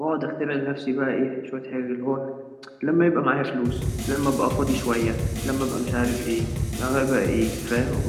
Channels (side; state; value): both; identical; correlation 1.00